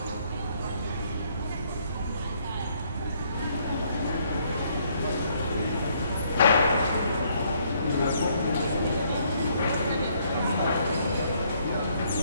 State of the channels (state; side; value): inverted; both; correlation -0.68